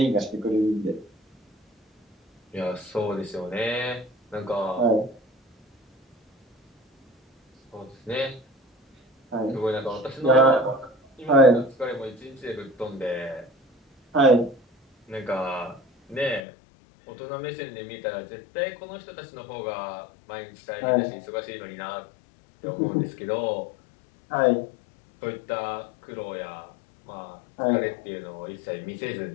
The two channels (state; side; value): drops out; right; at 16.4 s